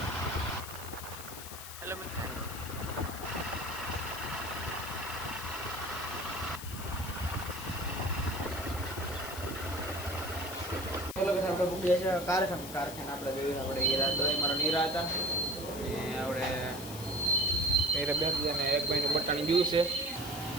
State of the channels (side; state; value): left; noise; hiss, 11 dB below the sound